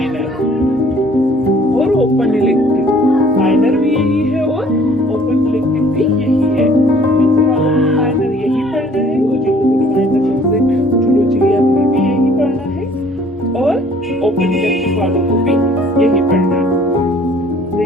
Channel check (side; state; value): both; normal; correlation 0.56